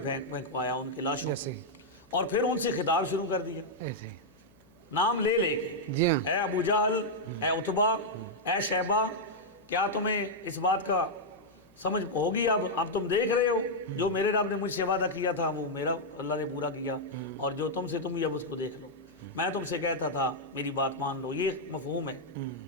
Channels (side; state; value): left; noise; hum, 30 dB below the sound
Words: ان کے لاشوں ایسے کو، اور پھر ان سے خطاب شروع کر دیا ایسے نام لے لے کے، جی ہاں اے ابو جہل، اے عتبہ، اے شیبہ، کیا تمہیں اس بات کا سمجھ ہوگی؟ اب تم دیکھ رہے ہو جو میرے رب نے مجھ سے وعدہ کیا تھا وہ میرا اللہ نے پورا کیا، اور جو تم سے تم بھی اب اس کو دیکھ لو، میں تم سے کہتا تھا میری بات مان لو۔ یہ مفہوم ہے